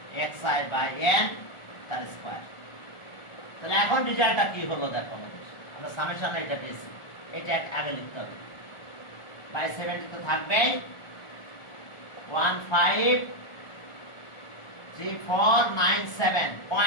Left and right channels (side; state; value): right; late; 1.4 ms